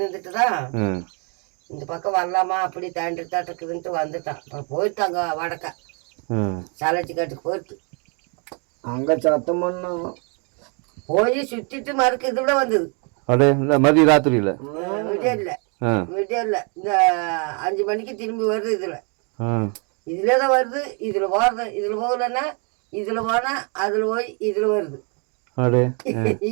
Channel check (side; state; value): left; quieter; 36.6 dB